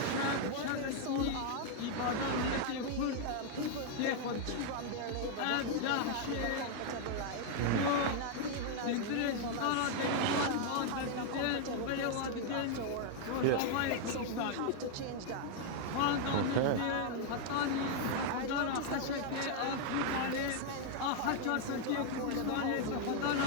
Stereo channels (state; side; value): different; both; correlation 0.00